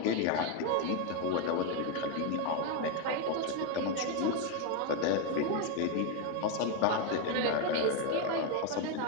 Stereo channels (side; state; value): both; different; correlation 0.02